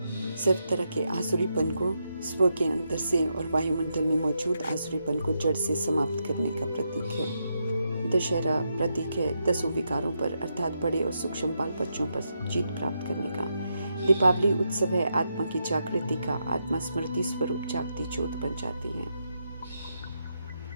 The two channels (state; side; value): inverted; both; correlation -0.82